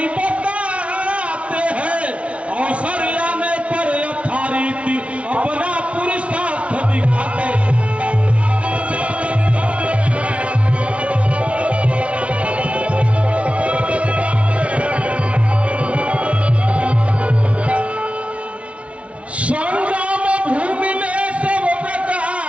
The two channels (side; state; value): left; late; 0.063 ms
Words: बताते हैं, अवसर आने पर यथारीति अपना पुरुषार्थ दिखाते हैं। संग्राम भूमि में सब